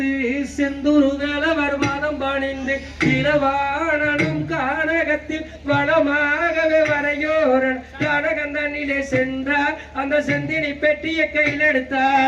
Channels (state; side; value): identical; both; correlation 1.00